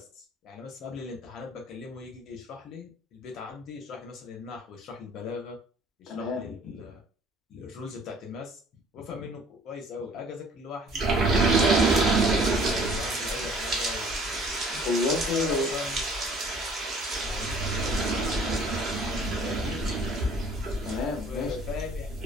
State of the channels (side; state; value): both; normal; correlation 0.54